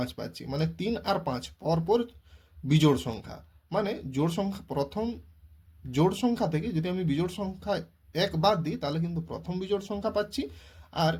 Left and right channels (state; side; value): identical; both; correlation 1.00